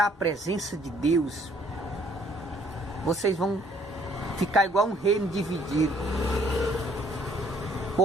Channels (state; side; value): normal; both; correlation 0.62